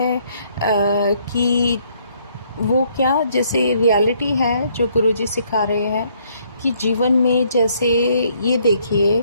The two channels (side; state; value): both; inverted; correlation -0.67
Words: कि वो क्या, जैसे रियलिटी है जो गुरुजी सिखा रहे हैं कि जीवन में, जैसे ये देखिए,